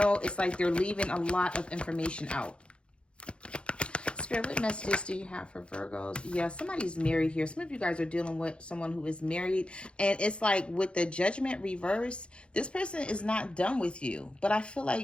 it's like they're leaving a lot of information out. Spirit, what messages do you have for Virgos? Yeah, somebody's married here. Some of you guys are dealing with someone who is married. And it's like with the Judgment reverse, this person is not done with you. But I feel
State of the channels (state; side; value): late; right; 0.057 ms